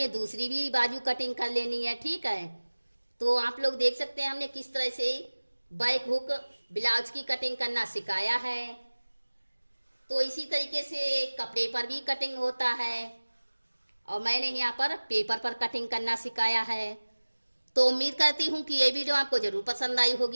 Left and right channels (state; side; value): inverted; both; correlation -1.00